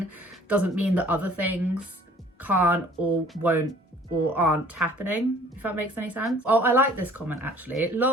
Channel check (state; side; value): normal; both; correlation 0.53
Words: doesn't mean that other things can't or won't or aren't happening, if that makes any sense. Oh, I like this comment actually.